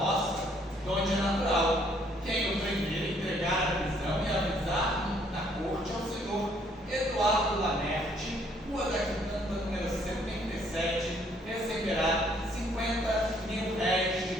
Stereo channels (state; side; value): normal; both; correlation 0.65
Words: de onde é natural. Quem o primeiro entregar a prisão e avisar na corte ao senhor Eduardo Lamerte, Rua da Quitanda, número 77, receberá 50 mil réis de